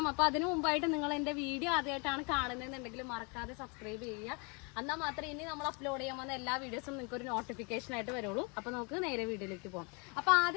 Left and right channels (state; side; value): quieter; right; 32.8 dB